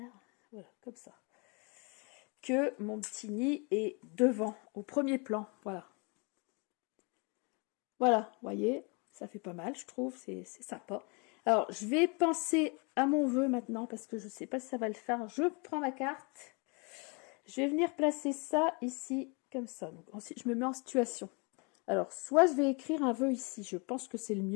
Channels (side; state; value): right; quieter; 32.6 dB